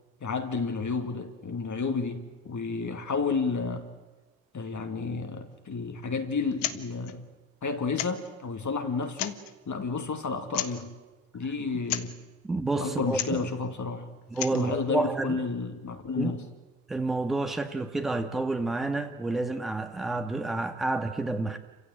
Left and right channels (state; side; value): normal; both; correlation 0.43